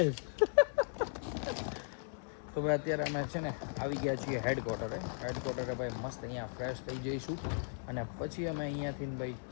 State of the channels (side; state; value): right; silent; 53 dB below the other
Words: તો ભાઈ અત્યારે અમે છે ને આવી ગયા છીએ હેડક્વાર્ટરે ભાઈ મસ્ત અહીંયા ફ્રેશ થઈ જઈશું અને પછી અમે અહીંયાથી ભાઈ